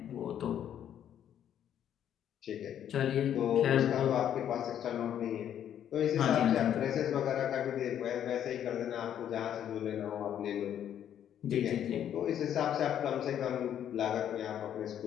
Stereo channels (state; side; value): quieter; right; 10.0 dB